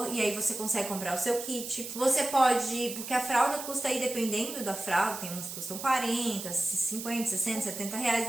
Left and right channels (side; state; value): right; noise; hiss, 9 dB below the sound